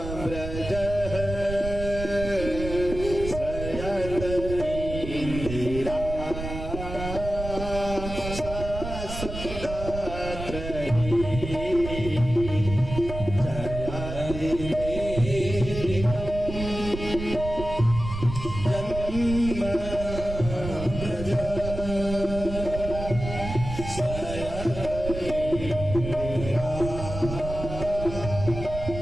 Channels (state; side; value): noise; right; rumble, 8 dB below the sound